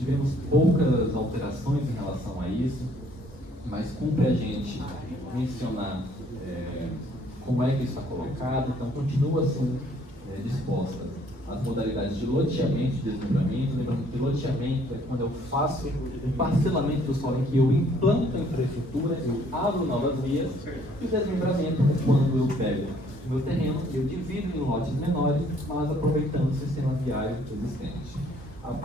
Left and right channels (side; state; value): both; normal; correlation 0.62